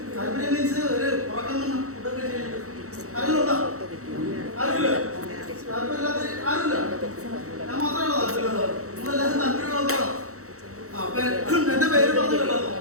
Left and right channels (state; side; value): late; left; 0.65 ms